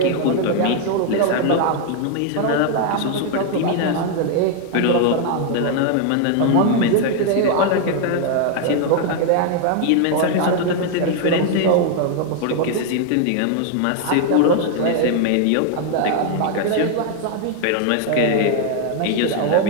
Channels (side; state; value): both; different; correlation 0.00